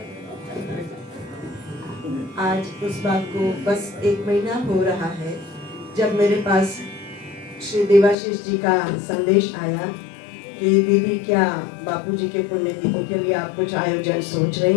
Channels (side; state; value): right; drops out; at 8.2 s